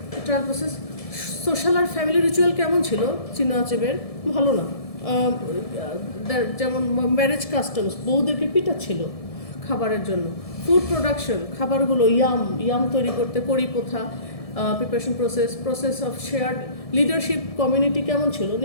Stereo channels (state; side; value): late; right; 1.7 ms